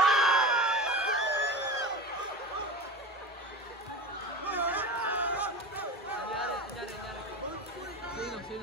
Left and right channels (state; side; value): normal; both; correlation 0.29